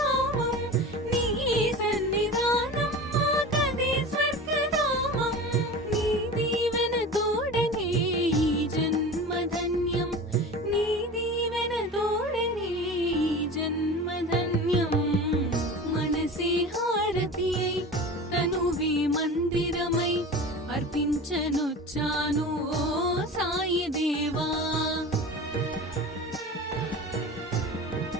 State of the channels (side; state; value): both; normal; correlation 0.33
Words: నీ సన్నిధానం మాకదే స్వర్గధామం. నీ దీవెన తోడనే ఈ జన్మధన్యం, నీ దీవెన తోడనే ఈ జన్మధన్యం. మనసే హారతి అయి తనువే మందిరమై అర్పించనొచ్చాను ఓ సాయి దేవా.